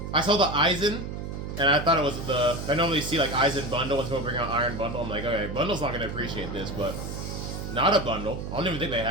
I saw the Aizen, and I thought it was the... I normally see, like, Aizen Bundle when someone bring out Iron Bundle. I'm like, okay, Bundle's not going to appreciate this, but... Not a Bundle. I don't even think they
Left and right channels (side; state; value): right; noise; hum, 6 dB below the sound